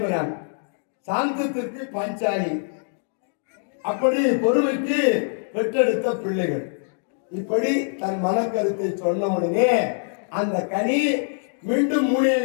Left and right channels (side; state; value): right; silent; digital silence